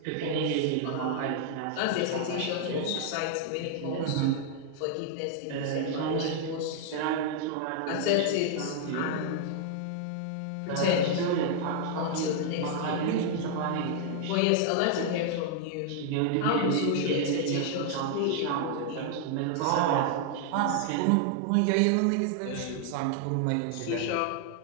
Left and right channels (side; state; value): both; different; correlation -0.01